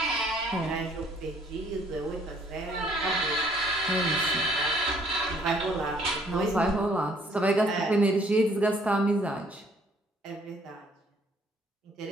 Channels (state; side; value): normal; both; correlation 0.63